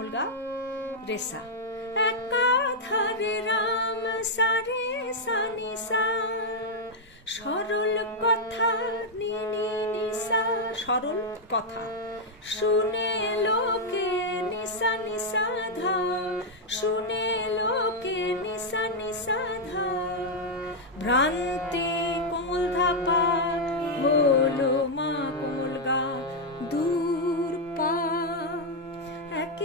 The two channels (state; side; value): normal; both; correlation -0.02